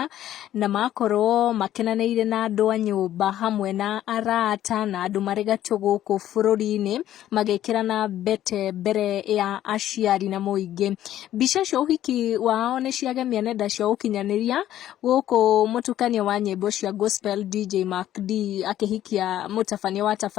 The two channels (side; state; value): right; quieter; 12.4 dB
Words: na makorwo makenanĩire na andũ a nyũmba hamwe na arata na andũ marĩ gatũ gũkũ bũrũri-inĩ magĩkĩra na mbete mbere ya aciari na mũingĩ. Mbica cia ũhiki wao nĩ ciagemia nenda cia ũkinyanĩria gũkũ mũtukanio wa nyĩmbo cia gospel DJ Mark D akĩhikia mũtabania wa